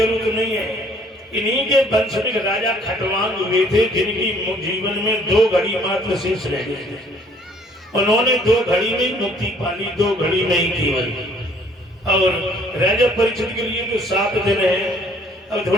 नहीं है। इन्हीं के वंश में राजा खटवांग हुए थे, जिनकी जीवन में 2 घड़ी मात्र शेष रह गए। उन्होंने 2 घड़ी में मुक्ति पाली, 2 घड़ी में ही केवल। और राजा परीक्षित के लिए तो 7 दिन है। अब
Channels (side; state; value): both; normal; correlation 0.60